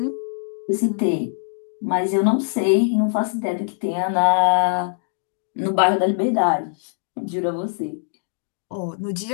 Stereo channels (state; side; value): silent; right; digital silence